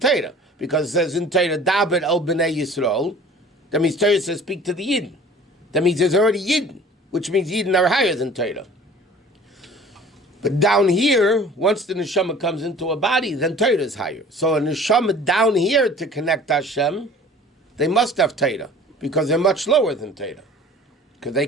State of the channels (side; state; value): both; normal; correlation 0.47